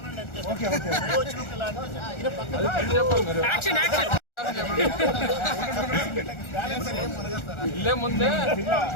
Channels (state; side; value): late; right; 1.4 ms